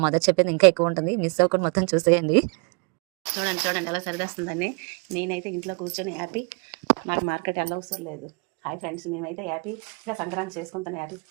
మదర్ చెప్పేది ఇంకా ఎక్కువ ఉంటుంది. మిస్ అవ్వకుండా మొత్తం చూసేయండి. చూడండి చూడండి ఎలా సరిదేస్తుందని. నేనైతే ఇంట్లో కూర్చొని హ్యాపీ, నాకు మార్కెట్ అవసరం లేదు. హాయ్ ఫ్రెండ్స్, మేమైతే హ్యాపీగా సంక్రాంతి చేసుకుంటాను. హ్యాపీ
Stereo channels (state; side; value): quieter; left; 35.4 dB